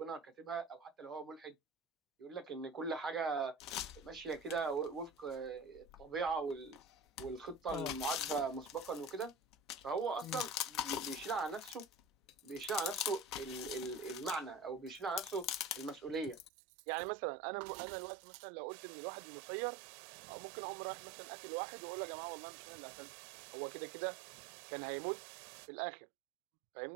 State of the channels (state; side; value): drops out; left; at 16.5 s